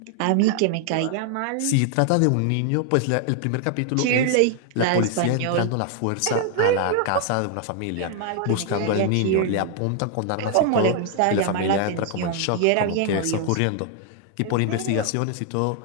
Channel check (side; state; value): both; different; correlation 0.00